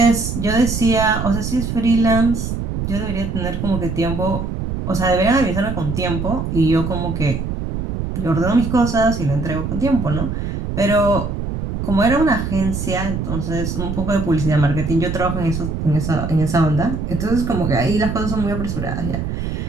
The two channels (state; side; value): noise; right; rumble, 3 dB below the sound